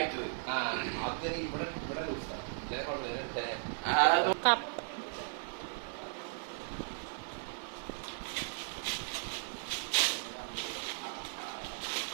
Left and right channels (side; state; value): left; silent; digital silence